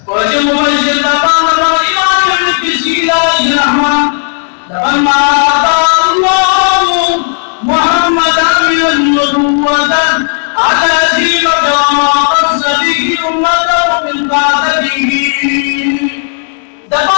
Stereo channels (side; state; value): right; silent; digital silence